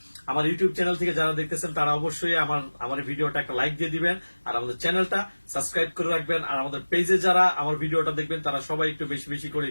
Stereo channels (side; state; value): both; inverted; correlation -1.00